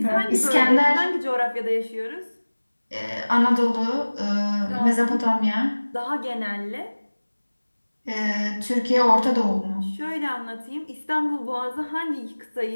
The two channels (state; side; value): inverted; both; correlation -1.00